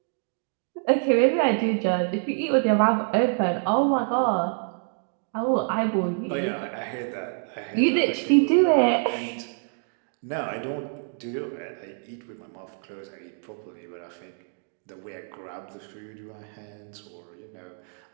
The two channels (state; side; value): silent; left; 60 dB below the other